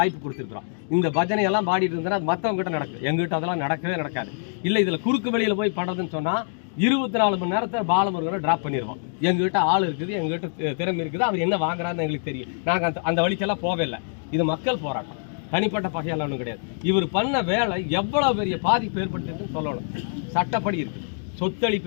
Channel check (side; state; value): right; silent; digital silence